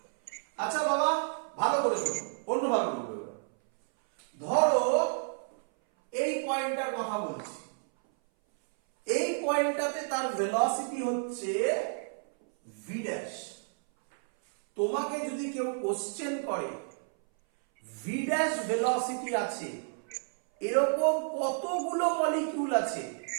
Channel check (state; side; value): silent; left; 57 dB below the other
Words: আচ্ছা বাবা ভালো করে শোনো, অন্যভাবে বলবো। ধরো এই পয়েন্টটার কথা বলছি, এই পয়েন্টটাতে তার ভেলোসিটি হচ্ছে v ড্যাশ। তোমাকে যদি কেউ কোশ্চেন করে v ড্যাশ ভেলোসিটি আছে, এরকম কতগুলো মলিকিউল আছে,